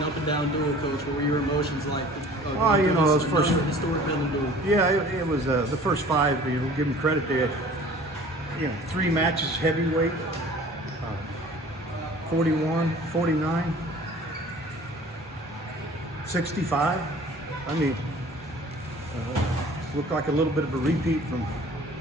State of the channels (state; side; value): normal; both; correlation 0.47